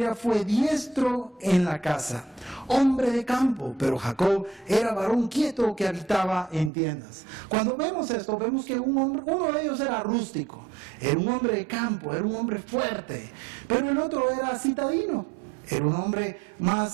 fue diestro en la casa, hombre de campo, pero Jacob era varón quieto que habitaba en tiendas. Cuando vemos esto, vemos que uno de ellos era rústico, era un hombre de campo, era un hombre fuerte, pero el otro era citadino, era un hombre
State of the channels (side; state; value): left; drops out; at 6.7 s